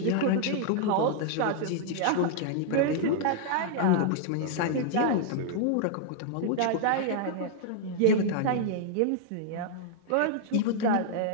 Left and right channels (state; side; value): different; both; correlation -0.01